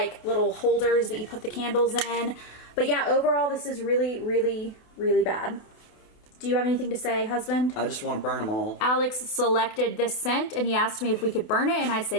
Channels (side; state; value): right; late; 28 ms